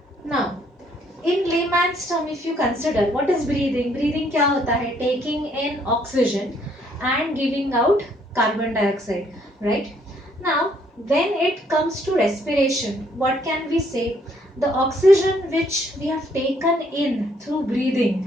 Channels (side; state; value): both; normal; correlation 0.67